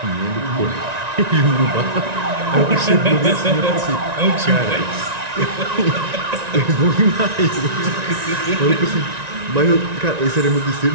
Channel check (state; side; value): late; left; 1.9 ms